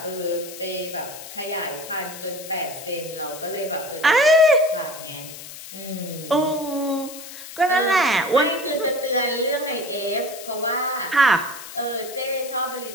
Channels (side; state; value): left; noise; hiss, 13 dB below the sound